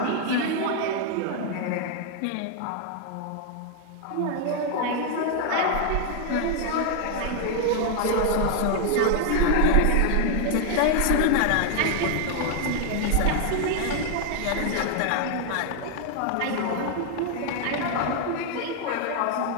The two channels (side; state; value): both; different; correlation 0.00